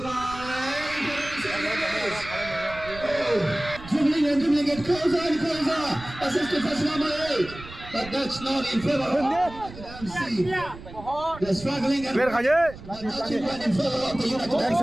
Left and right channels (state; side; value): noise; right; rumble, 15 dB below the sound